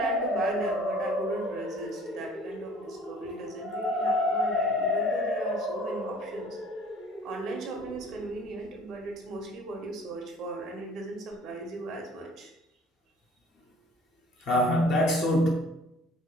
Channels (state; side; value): normal; both; correlation 0.51